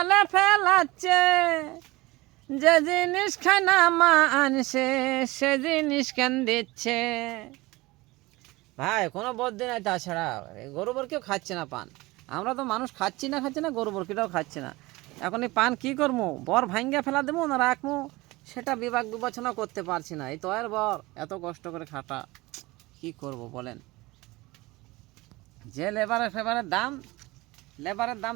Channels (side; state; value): left; quieter; 21.3 dB